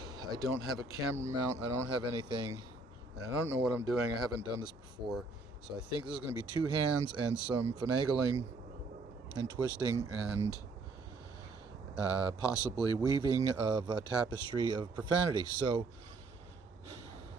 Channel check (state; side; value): quieter; left; 3.5 dB